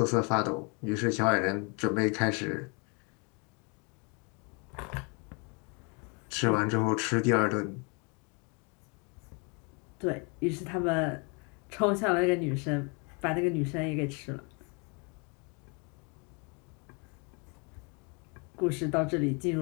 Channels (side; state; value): right; quieter; 33.6 dB